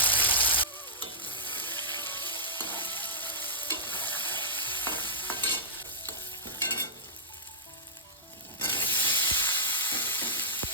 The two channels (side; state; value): both; normal; correlation -0.15